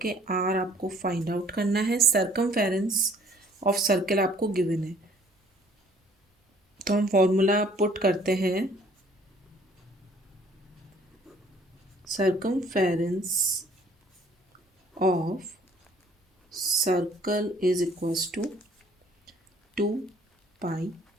आर आपको फाइंड आउट करना है, सर्कमफेरेंस ऑफ सर्कल आपको गिवन है। तो हम फॉर्मूला पुट करते हैं, circumference of circle is equals to 2 pi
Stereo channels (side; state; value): both; normal; correlation 0.58